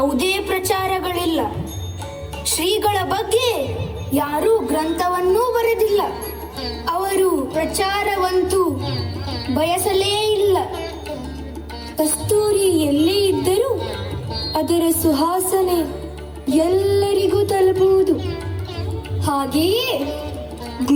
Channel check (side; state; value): both; identical; correlation 1.00